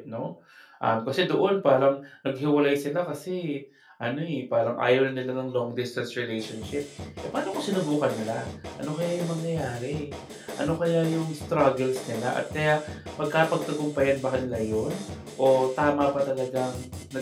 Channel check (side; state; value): both; identical; correlation 1.00